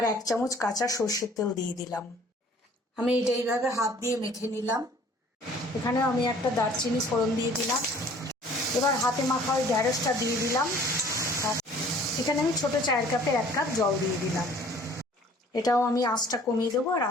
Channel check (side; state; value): both; normal; correlation 0.53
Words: 1 চামচ কাঁচা সর্ষের তেল দিয়ে দিলাম। আমি এটা এইভাবে হাত দিয়ে মেখে নিলাম। এখানে আমি একটা দারচিনি ফোড়ন দিয়ে দিলাম। এবার হাতে মাখা ওই ঢ্যাঁড়সটা দিয়ে দিলাম। আর এখানে আমি ছোট চায়ের কাপে 1 কাপ জল দিয়ে দিলাম। এটাও আমি আঁচটা কমিয়ে দেবো আর